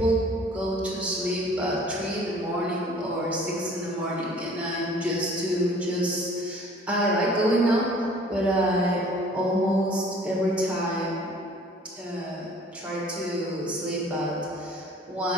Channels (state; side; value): normal; both; correlation 0.51